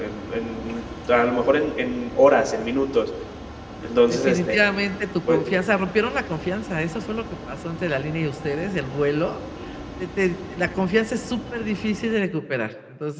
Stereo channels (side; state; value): both; identical; correlation 1.00